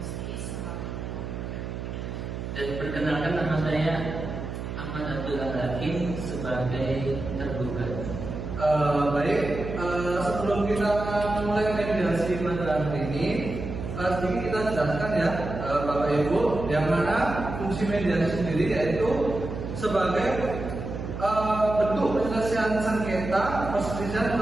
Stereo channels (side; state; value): right; noise; hum, 6 dB below the sound